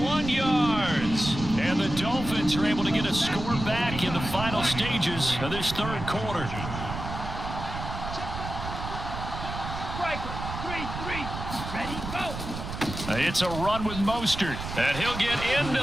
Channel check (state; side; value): noise; right; rumble, 7 dB below the sound